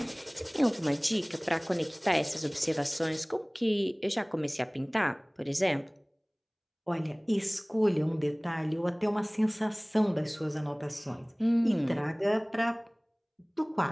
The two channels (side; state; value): both; identical; correlation 1.00